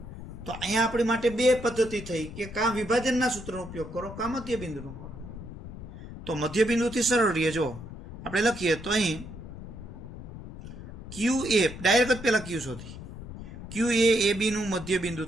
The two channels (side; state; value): left; noise; rumble, 12 dB below the sound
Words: તો અહીંયા આપણી માટે 2 પદ્ધતિ થઈ કે કાં વિભાજનના સૂત્રનો ઉપયોગ કરો કાં મધ્ય બિંદુનો કરો. તો મધ્ય બિંદુથી સરળ રહીએ. જો આપણે લખીએ તો અહીં ક્યુ એ ડાયરેક્ટ જ પહેલા ક્યુ શોધી, ક્યુ એ બીનું મધ્ય બિંદુ